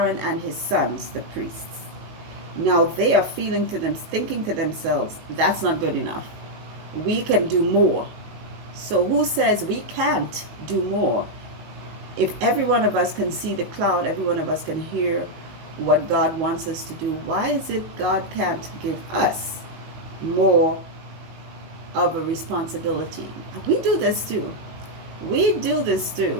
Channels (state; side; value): late; left; 19 ms